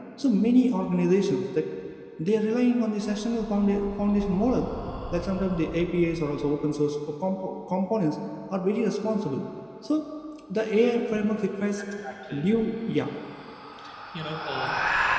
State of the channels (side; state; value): both; identical; correlation 1.00